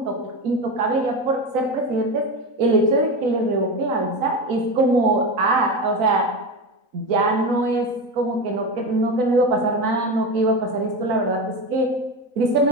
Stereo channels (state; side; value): late; left; 4.0 ms